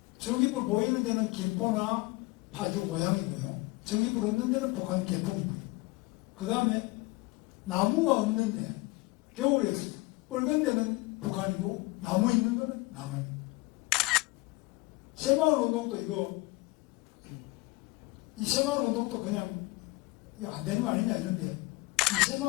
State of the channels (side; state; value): right; quieter; 22.7 dB